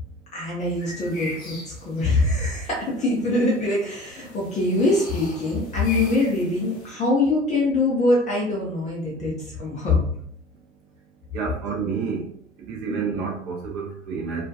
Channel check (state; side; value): normal; both; correlation 0.44